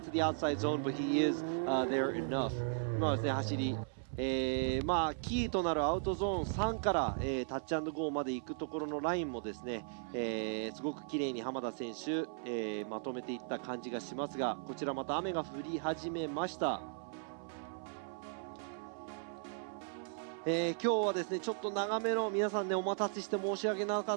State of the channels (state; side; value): silent; left; 53 dB below the other